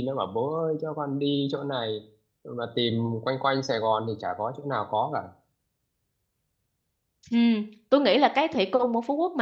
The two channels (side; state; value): both; identical; correlation 1.00